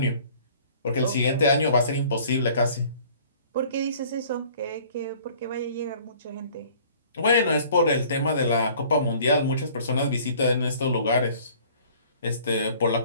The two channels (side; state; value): both; inverted; correlation -0.52